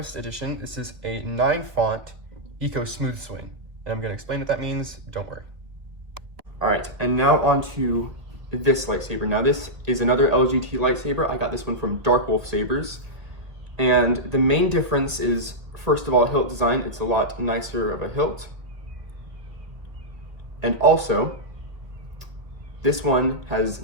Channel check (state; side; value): late; left; 1.8 ms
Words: edition. This is a 9 font Eco Smooth Swing, and I'm gonna explain what that means, don't worry. All right, and now on to this lightsaber. Now this is another LGT lightsaber. I got this one from Dark Wolf Sabres. And the main difference is, first of all, hilt design. It's a lot nicer of a hilt. And also, this one has